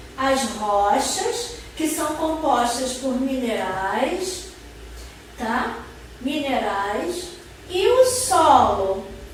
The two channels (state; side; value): identical; both; correlation 1.00